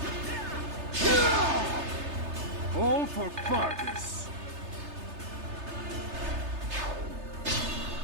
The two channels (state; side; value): late; left; 3.3 ms